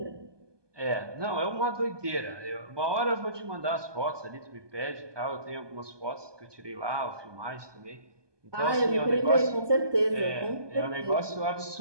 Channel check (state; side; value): late; left; 1.2 ms